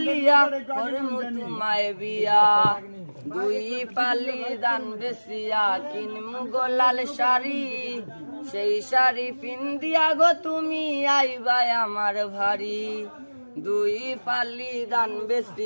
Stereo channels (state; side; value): inverted; both; correlation -1.00